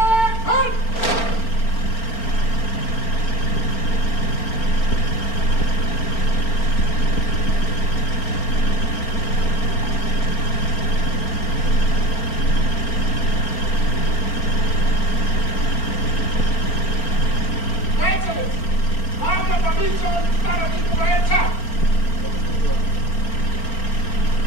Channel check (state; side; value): late; right; 4.4 ms